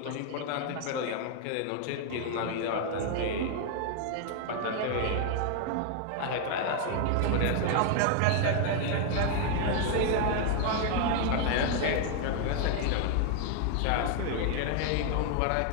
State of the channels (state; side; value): different; both; correlation 0.00